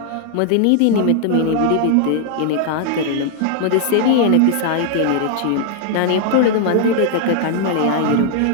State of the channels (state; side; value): different; both; correlation -0.01